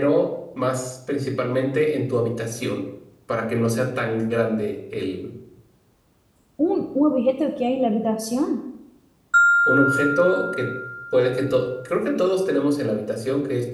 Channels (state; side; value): identical; both; correlation 1.00